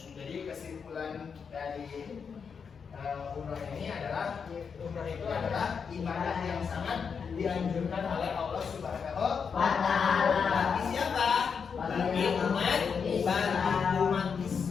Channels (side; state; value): right; quieter; 6.2 dB